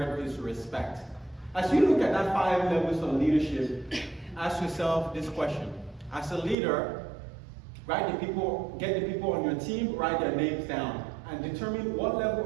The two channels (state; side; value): drops out; left; at 6.6 s